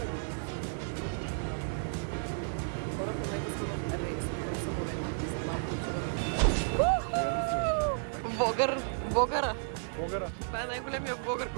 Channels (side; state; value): left; silent; digital silence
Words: Хора, в момента сме в рейс към самолета. Влогъра. Това е най-големия влогър,